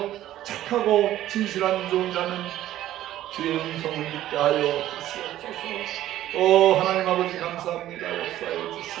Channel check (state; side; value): quieter; left; 13.5 dB